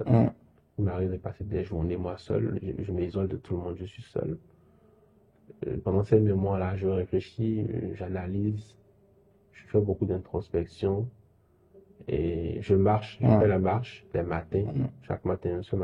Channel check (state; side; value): identical; both; correlation 1.00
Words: Il m'arrive de passer des journées, moi, seul. Je m'isole de tout le monde, je suis seul. Pendant ces moments-là, je réfléchis, j'analyse, je fais beaucoup d'introspection. Et je marche, je fais la marche les matins. Chaque matin, ce